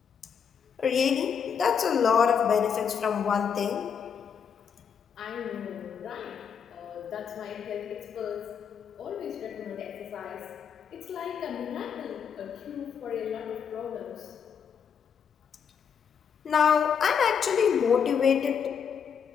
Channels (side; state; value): right; quieter; 7.1 dB